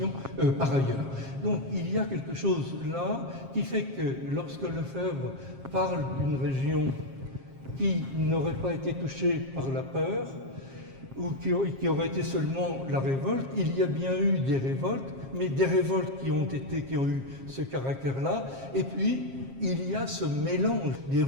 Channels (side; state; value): left; late; 7.5 ms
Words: par ailleurs. Donc il y a quelque chose là qui fait que lorsque Lefebvre parle d'une région qui n'aurait pas été touchée par la peur, ou qui aurait été seulement la révolte, il y a bien eu des révoltes, mais des révoltes qui ont eu ce caractère-là, et puis il y a ce mélange des